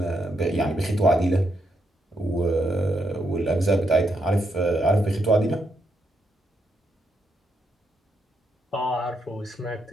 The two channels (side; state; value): both; normal; correlation 0.79